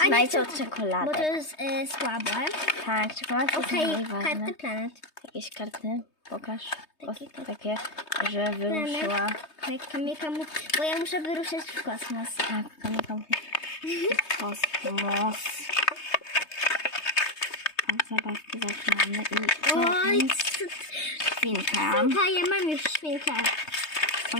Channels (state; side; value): late; right; 3.2 ms